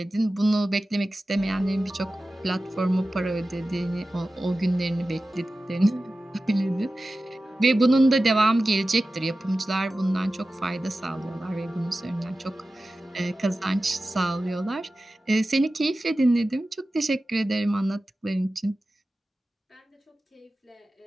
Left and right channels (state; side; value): normal; both; correlation 0.95